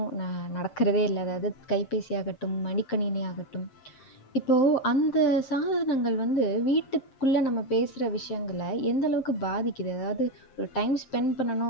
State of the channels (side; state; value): right; late; 7.6 ms